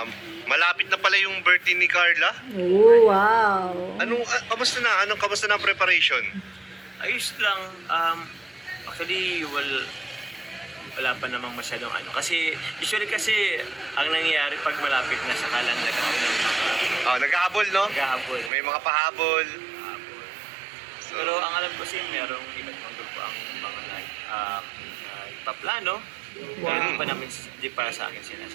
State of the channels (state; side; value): drops out; left; at 18.5 s